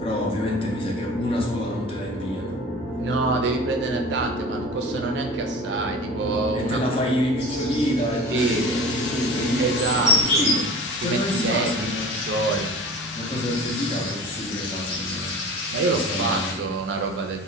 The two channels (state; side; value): normal; both; correlation 0.38